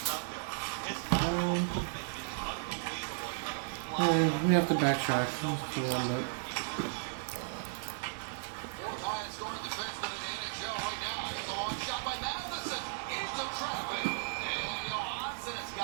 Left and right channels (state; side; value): silent; left; 55 dB below the other